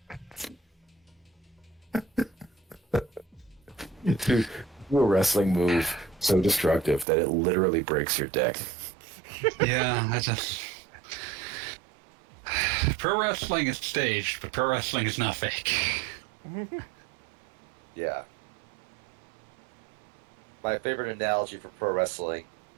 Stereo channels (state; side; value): drops out; left; at 7.1 s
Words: Dude, do a wrestling move so destructive that it literally breaks your dick. Yeah, I just. Pro wrestling is staged, but pro wrestling is not fake. Yeah. My favorite analogy for pro wrestling